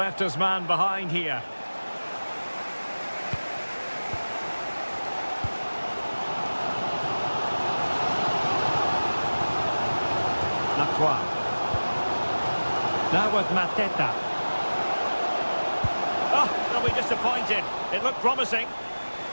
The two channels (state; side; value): inverted; both; correlation -1.00